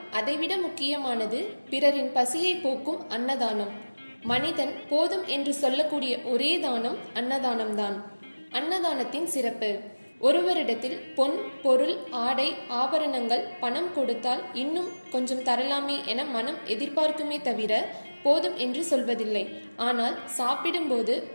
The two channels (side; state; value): both; inverted; correlation -1.00